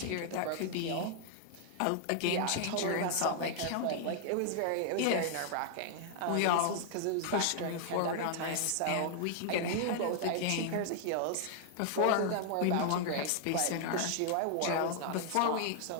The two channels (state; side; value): different; both; correlation 0.00